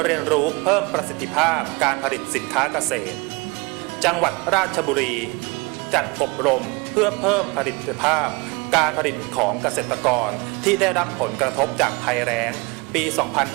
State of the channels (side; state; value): left; quieter; 26.9 dB